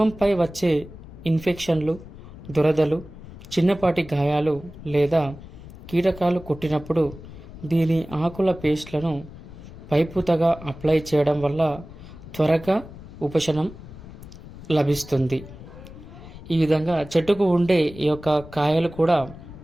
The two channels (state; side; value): noise; left; rumble, 16 dB below the sound